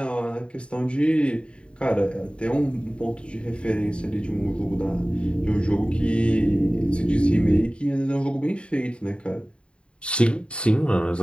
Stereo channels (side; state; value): right; late; 0.055 ms